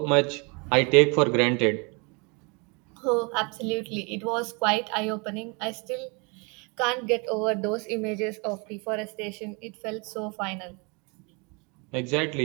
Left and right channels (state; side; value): quieter; left; 31.4 dB